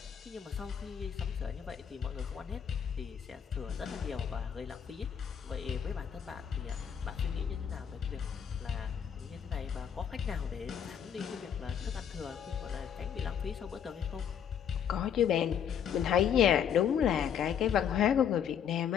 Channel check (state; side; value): quieter; right; 8.3 dB